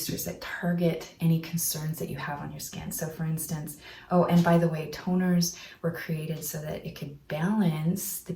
that target any concerns that you have on your skin. So for instance, oh, and by the way, toners were created so that it could balance the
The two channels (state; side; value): identical; both; correlation 1.00